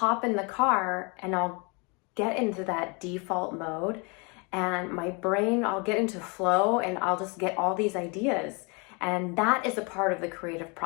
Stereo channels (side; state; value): right; quieter; 31.6 dB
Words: in the car and I'll get into that default mode, and my brain, I'll get into flow and I'll just get all these ideas. And that is a part of the creative